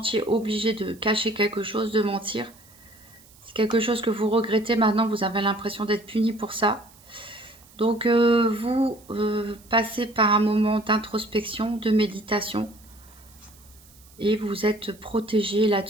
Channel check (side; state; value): right; noise; hiss, 26 dB below the sound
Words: obligé de cacher quelque chose, de mentir. C'est quelque chose que vous regrettez maintenant, vous avez l'impression d'être puni pour ça. Donc vous passez par un moment d'introspection, de méditation, et vous êtes protégé